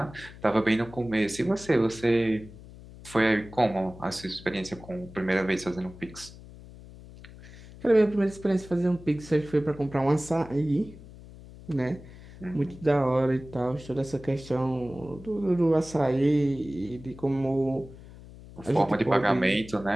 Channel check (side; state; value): left; noise; hum, 18 dB below the sound